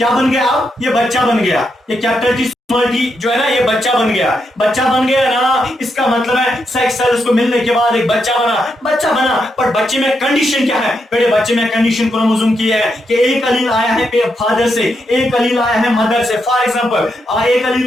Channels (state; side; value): normal; both; correlation 0.82